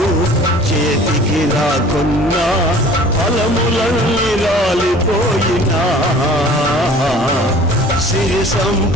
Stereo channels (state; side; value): normal; both; correlation 0.47